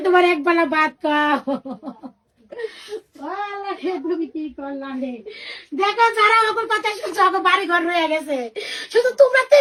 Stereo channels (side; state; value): both; identical; correlation 1.00